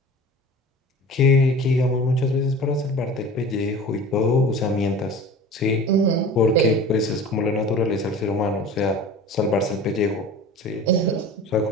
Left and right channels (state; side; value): normal; both; correlation 0.39